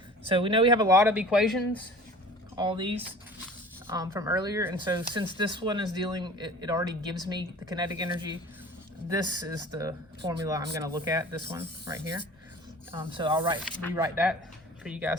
So we know we have a lot of equations, all these from earlier. And so since this one is it already gives me the kinetic energy, this is the formula I'm going to look at, this one right here. So I'll rewrite that for you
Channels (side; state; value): both; normal; correlation 0.43